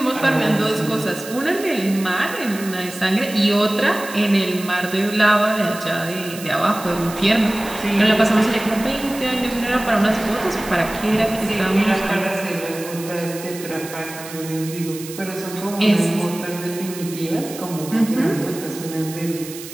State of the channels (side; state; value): right; noise; hiss, 13 dB below the sound